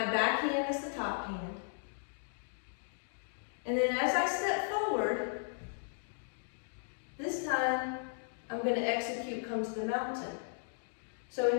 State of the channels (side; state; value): right; silent; digital silence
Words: back hand is the top hand. And then as I step forward, this time I'm going to execute come to the mountain. So